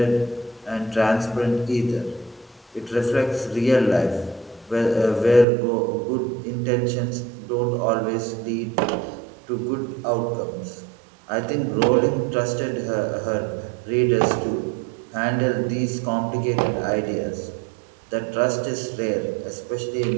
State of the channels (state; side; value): drops out; left; at 5.5 s